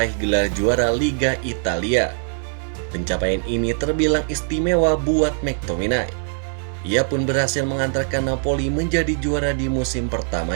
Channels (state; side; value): silent; left; digital silence